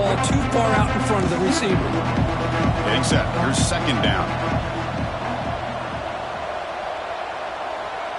too far out in front of the receiver. Getting set. Here's second down.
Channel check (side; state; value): both; identical; correlation 1.00